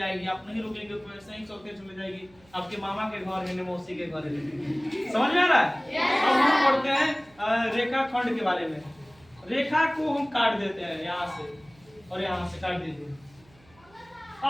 आप नहीं रुकेंगे तो ऐसे ही चलते चले जाएगी। आपके मामा के घर है, मौसी के घर है। समझ में आ रहा है? अब हम पढ़ते हैं रेखा खंड के बारे में। रेखा को हम काट देते हैं यहाँ से और यहाँ से काट दीजिए।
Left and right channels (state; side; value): noise; right; hum, 29 dB below the sound